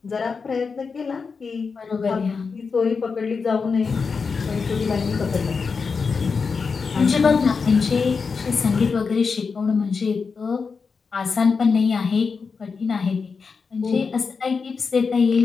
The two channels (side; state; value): right; quieter; 5.1 dB